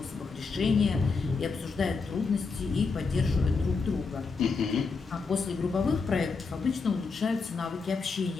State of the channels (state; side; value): quieter; right; 4.6 dB